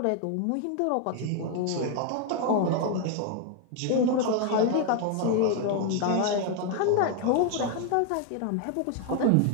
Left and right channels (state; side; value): different; both; correlation 0.00